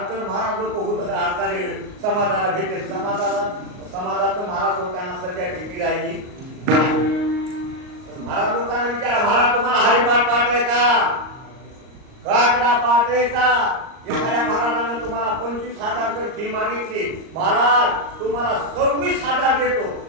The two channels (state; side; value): late; left; 38 ms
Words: तर महाराज लोक होत असणारे समाजाला भेटेल, समाजाचं महाराज लोकांना सध्या भीती राहिली. महाराज लोकांना विचारा, महाराज तुम्हाला हरिपाठ पाठ आहे का? काकडा पाठ आहे का? एखाद्या महाराजांना तुम्हाला 25,000 जर फी मागितली, महाराज तुम्हाला 26,000 देतो,